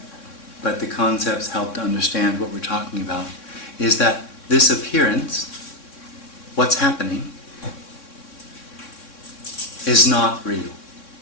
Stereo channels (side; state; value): right; late; 3.6 ms